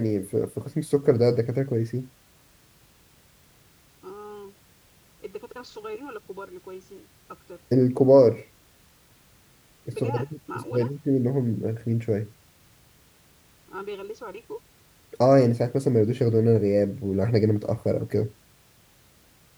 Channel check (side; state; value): both; identical; correlation 1.00